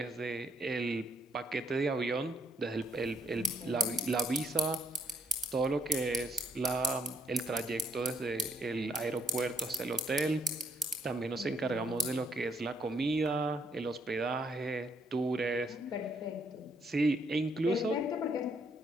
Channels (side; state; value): both; normal; correlation 0.70